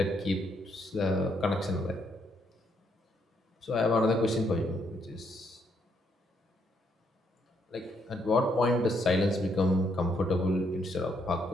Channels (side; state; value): both; normal; correlation 0.73